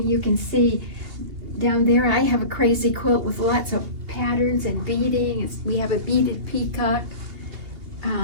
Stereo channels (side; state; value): left; late; 2.8 ms